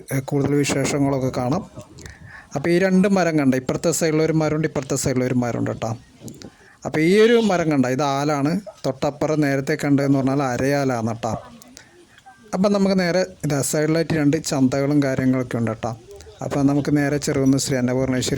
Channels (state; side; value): identical; both; correlation 1.00